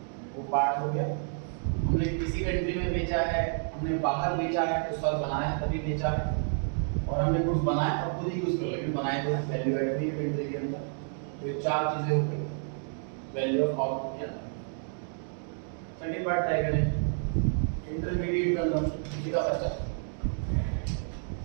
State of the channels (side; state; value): left; silent; 58 dB below the other